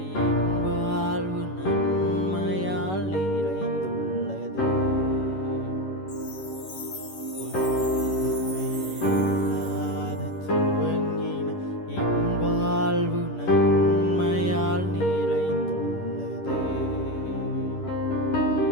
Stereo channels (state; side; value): late; right; 11 ms